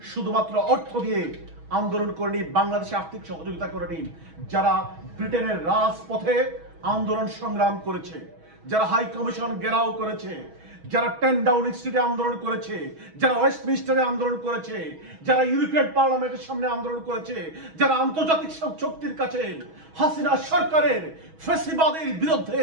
শুধুমাত্র অর্থ দিয়ে আন্দোলন করেনি, বাংলাদেশে আর্থিক সহযোগিতা করেনি, যারা ব্রিটেনের রাজপথে আন্দোলন সংগ্রাম করেছে, যারা হাই কমিশন ঘেরাও করেছে, যারা 10 ডাউনিং স্ট্রিটে আন্দোলন করেছে, যারা ওয়েস্টমিনিস্টারে আন্দোলন করেছে, যারা ইউরোপিয়ান পার্লামেন্টের সামনে আন্দোলন করেছে, যারা আন্তর্জাতিক শক্তির কাছে হাসিনা সরকারের ফ্যাসিবাদের বিরুদ্ধে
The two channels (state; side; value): late; left; 6.2 ms